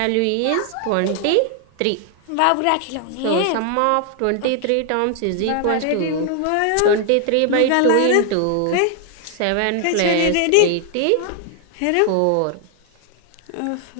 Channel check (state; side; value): different; both; correlation 0.00